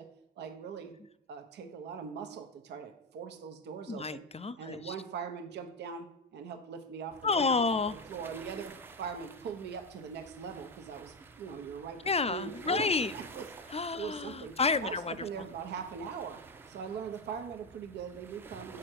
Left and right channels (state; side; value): normal; both; correlation 0.11